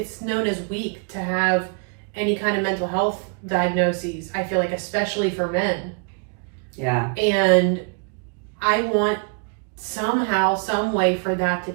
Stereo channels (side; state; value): left; quieter; 39.1 dB